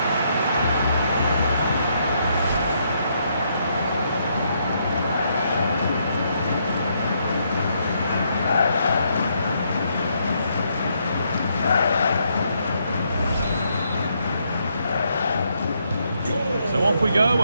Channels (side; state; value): both; inverted; correlation -0.75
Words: Off we go